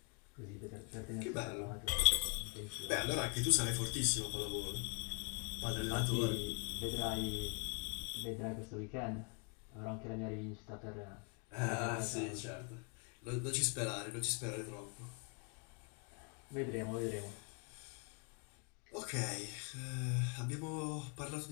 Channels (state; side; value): quieter; right; 34.4 dB